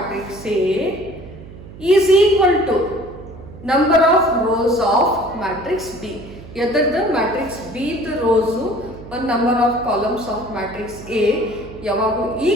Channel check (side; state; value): right; noise; hum, 16 dB below the sound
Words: A is equal to number of rows of matrix B. ಎದರ್ದ matrix B ದ rows ಒಂದು number of columns of matrix A ಯಾವಾಗ